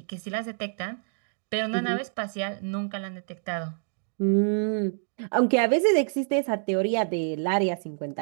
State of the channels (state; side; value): silent; left; digital silence